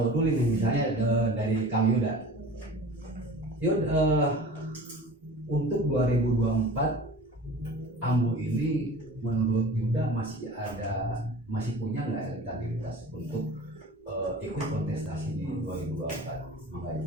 dulu nih, misalnya dari Kang Yuda. Yud, untuk 2024 Ambu ini menurut Yuda masih punya nggak elektabilitas untuk ikut kontestasi di 2024?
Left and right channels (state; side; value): normal; both; correlation 0.40